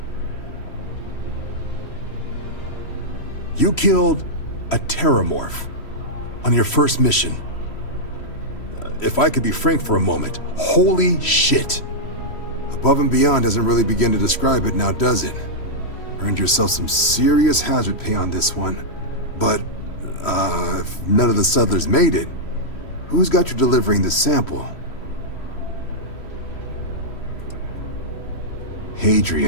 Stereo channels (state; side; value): late; right; 3.1 ms